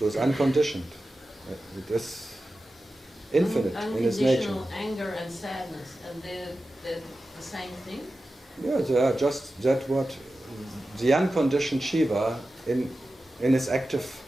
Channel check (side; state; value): both; normal; correlation 0.94